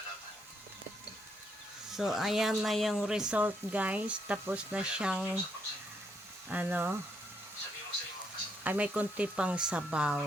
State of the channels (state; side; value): normal; both; correlation 0.75